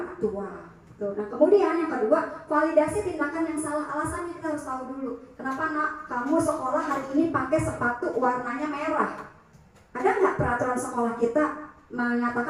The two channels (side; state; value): both; identical; correlation 1.00